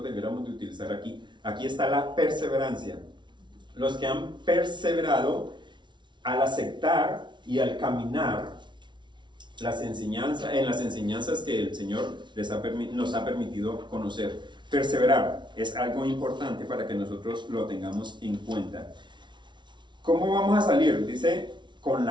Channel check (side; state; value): left; late; 0.23 ms